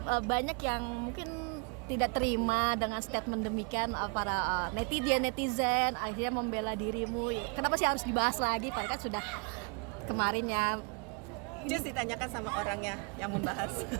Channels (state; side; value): quieter; left; 35.5 dB